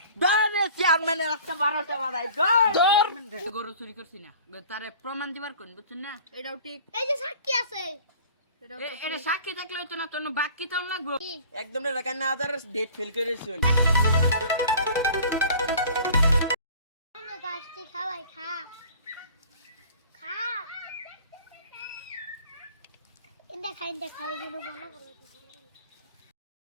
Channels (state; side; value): inverted; both; correlation -0.46